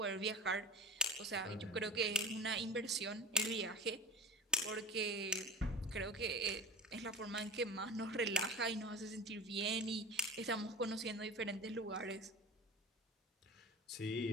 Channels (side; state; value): both; normal; correlation 0.31